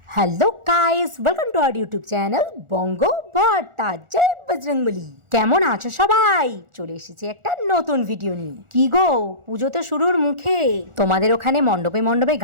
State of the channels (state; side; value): late; left; 1.4 ms